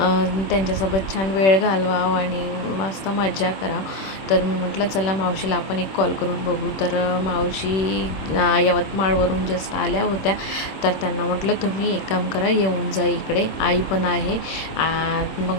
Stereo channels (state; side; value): late; right; 26 ms